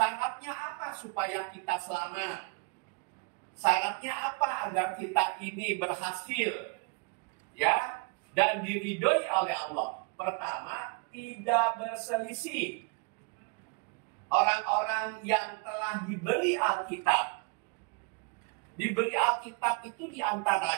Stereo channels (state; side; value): quieter; left; 32.7 dB